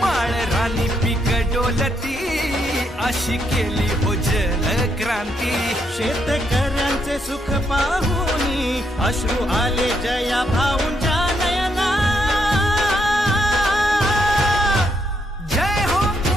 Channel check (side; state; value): both; normal; correlation 0.77